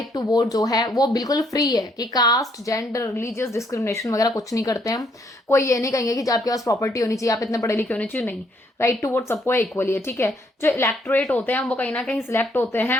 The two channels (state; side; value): normal; both; correlation 0.70